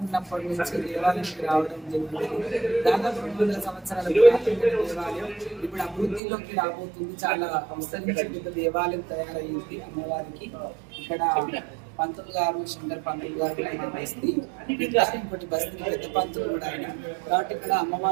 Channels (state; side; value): drops out; left; at 6.2 s